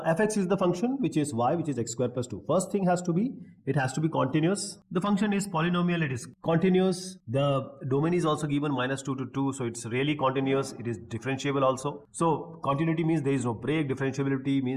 fx is the function which is y, which is x square plus 2. First thing has to be, it has to be continuous. The function is polynomial, it is continuous. The domain is also given -2 to 2, so it's really continuous. It is differentiable also. So continuity means there is no break. Differentiability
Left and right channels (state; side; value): identical; both; correlation 1.00